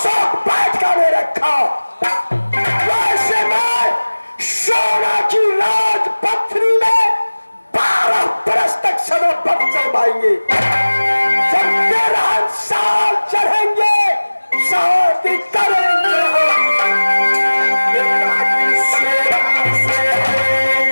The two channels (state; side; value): inverted; both; correlation -1.00